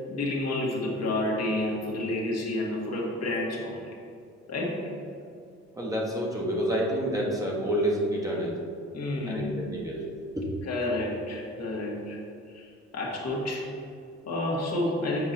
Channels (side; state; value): both; normal; correlation 0.42